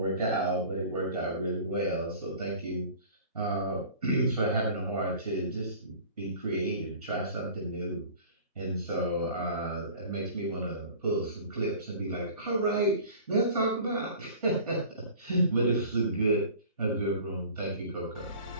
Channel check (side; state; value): both; inverted; correlation -0.44